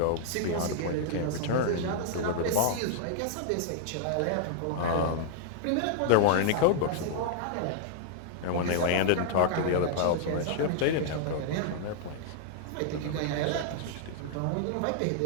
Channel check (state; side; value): different; both; correlation -0.01